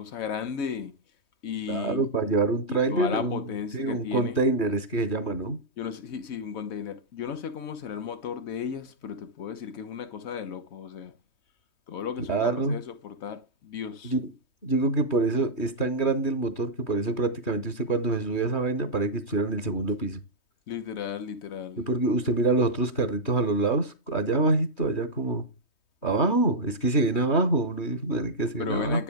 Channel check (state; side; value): late; right; 3.2 ms